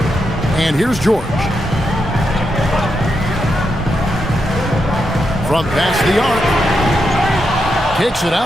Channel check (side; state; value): both; normal; correlation 0.84